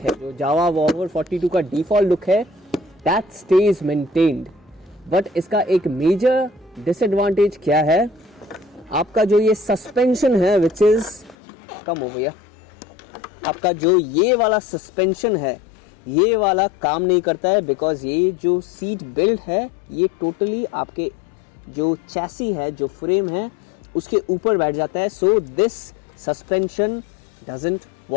है, जो जावा बॉबर 42 का default look है, that stays maintained. बट इसका एक मेजर डिसएडवांटेज क्या है, आपका जो ये सस्पेंशन है विच इज कम हो गया, आपका जो ये वाला सस्पेंशन है ये वाला काम नहीं करता है, बिकॉज ये जो सीट बेल्ट है ये टोटली आपके जो चैसी है, जो फ्रेम है उसके ऊपर बैठ जाता है। So this suspension doesn't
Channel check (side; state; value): right; drops out; at 11.4 s